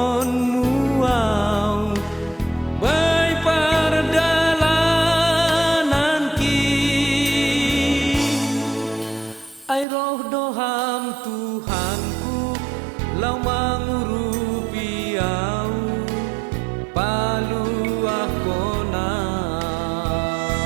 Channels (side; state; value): left; drops out; at 9.9 s